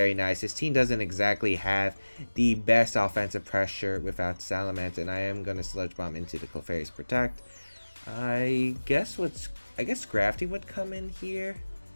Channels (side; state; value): both; inverted; correlation -1.00